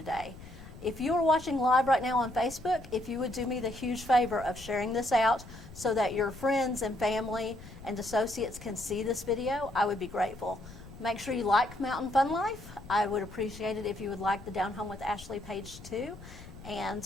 If you are watching live right now on Facebook, if you would do me the huge favor of sharing this out so that your friends and family and associates can see this video, I would be grateful. Make sure you like Mountain Fun Life. I would appreciate it if you would like the Down Home with Ashley page too. And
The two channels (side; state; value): left; noise; rumble, 16 dB below the sound